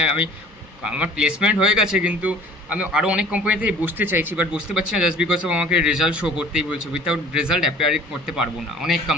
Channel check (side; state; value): both; normal; correlation 0.49